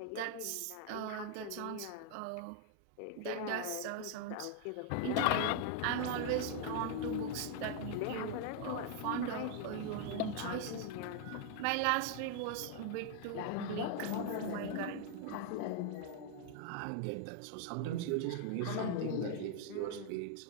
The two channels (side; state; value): both; different; correlation 0.00